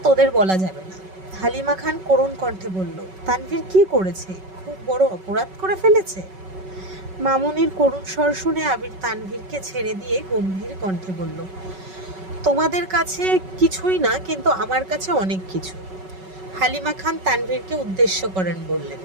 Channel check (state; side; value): late; left; 5.3 ms